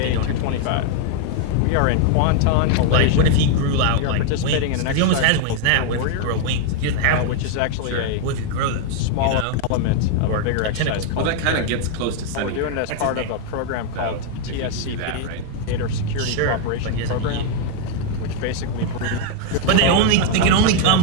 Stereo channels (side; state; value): both; different; correlation 0.00